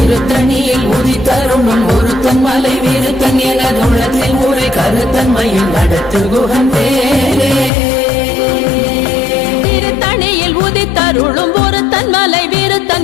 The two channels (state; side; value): drops out; right; at 7.7 s